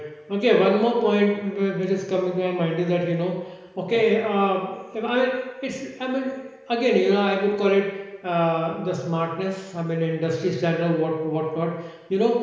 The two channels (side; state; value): both; identical; correlation 1.00